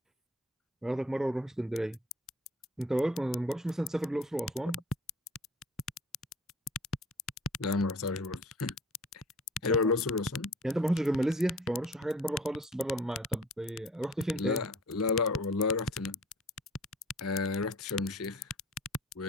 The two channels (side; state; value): both; normal; correlation 0.49